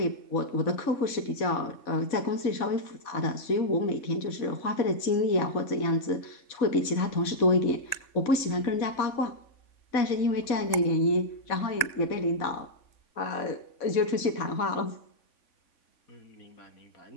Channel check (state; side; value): late; right; 3.5 ms